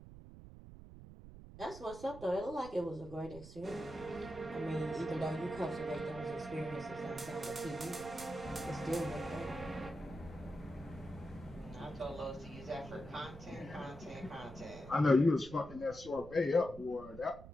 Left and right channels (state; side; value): noise; right; rumble, 15 dB below the sound